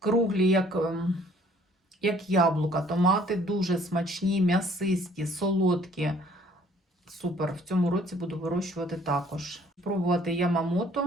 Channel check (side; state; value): both; normal; correlation 0.58